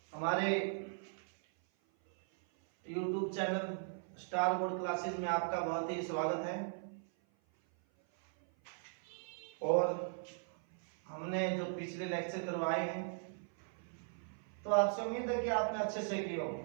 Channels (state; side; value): silent; left; 52 dB below the other